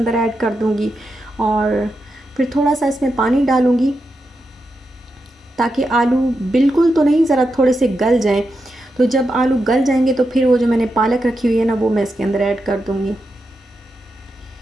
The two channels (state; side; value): normal; both; correlation 0.87